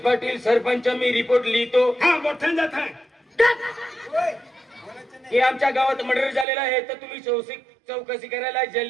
पाटील सरपंच मी रिपोर्ट लिहितो हा मोठ्यान जात आहे की आमच्या गावात मर्डर झालेला आहे तर तुम्ही चौकशी करायला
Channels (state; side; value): drops out; left; at 6.5 s